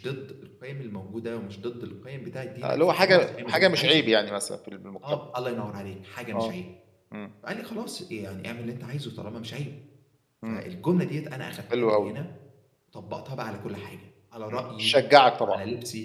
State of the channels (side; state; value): both; identical; correlation 1.00